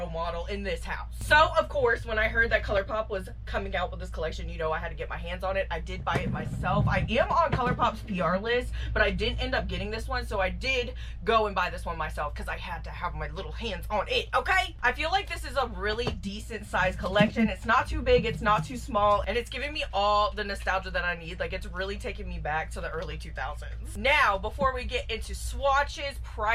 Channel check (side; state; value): both; identical; correlation 1.00